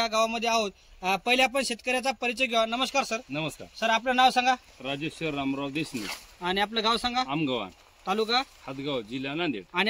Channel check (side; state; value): both; identical; correlation 1.00